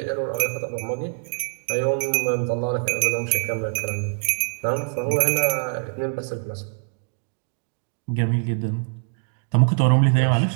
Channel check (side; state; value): left; silent; digital silence